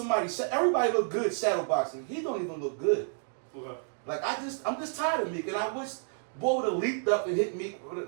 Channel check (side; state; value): left; silent; digital silence